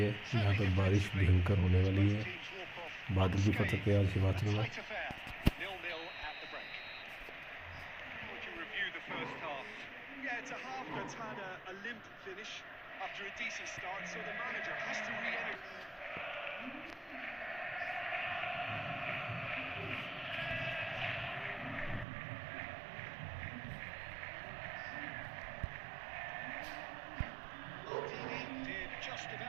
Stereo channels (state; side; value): drops out; left; at 22.1 s